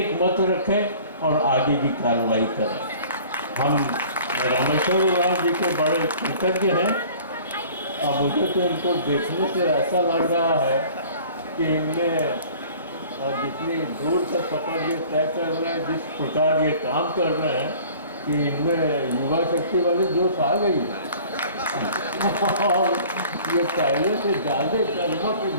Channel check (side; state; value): both; inverted; correlation -0.48